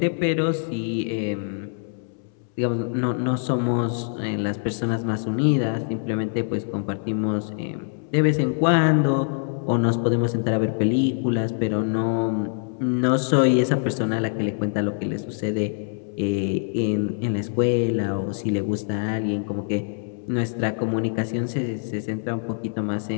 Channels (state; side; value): silent; right; 62 dB below the other